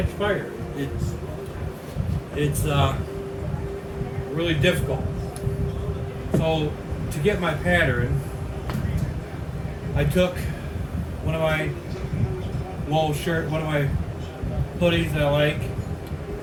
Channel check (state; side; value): identical; both; correlation 1.00